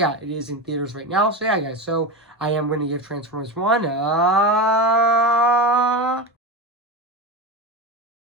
it is in theaters right now. So yeah, guys. So I am going to give Transformers One.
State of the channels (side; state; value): both; normal; correlation 0.20